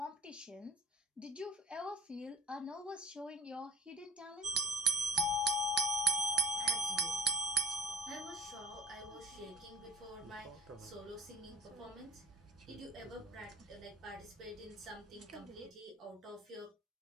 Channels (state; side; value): normal; both; correlation 0.32